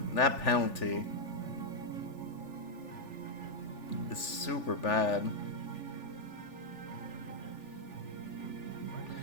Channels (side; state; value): right; late; 3.4 ms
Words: penalty is super bad.